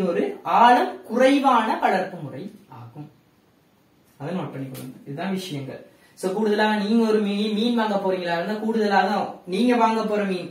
ஒரு ஆழம் குறைவான வளர்ப்பு முறை ஆகும். அதை நோட் பண்ணிக்கொள்ளுங்க, இதுதான் விஷயங்கள். சோ கூடுதலாக நீங்க ஒரு மீன் வாங்க போறீங்களா இருந்தா கூடுதலாக நீங்க வாங்க போற மீன்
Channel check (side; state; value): both; identical; correlation 1.00